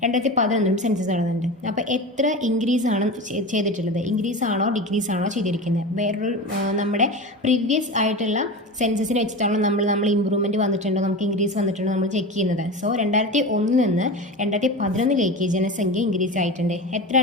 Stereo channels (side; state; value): both; normal; correlation 0.27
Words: 2011 സെൻസസ് നടന്നിട്ടുണ്ട്. അപ്പോൾ എത്ര ഇൻക്രീസ് ആണ് ചെയ്തിട്ടുള്ളത്? ഇൻക്രീസ് ആണോ ഡിക്രീസ് ആണോ ചെയ്തിരിക്കുന്നത്? വേറൊരു നമ്മുടെ പ്രീവിയസ് ആയിട്ടുള്ള സെൻസസിനെ വെച്ചിട്ടാണോ നമ്മൾ ഇമ്പ്രൂവ്മെൻറ്റ് വന്നിട്ടുണ്ടോ, നമുക്ക് ഇൻക്രീസ് വന്നിട്ടുണ്ടോ നമ്മൾ ചെക്ക് ചെയ്യുന്നത്. സോ 2001 നിന്ന് 2011 ജനസംഖ്യ ഇൻക്രീസ് ആയിട്ടുണ്ട്.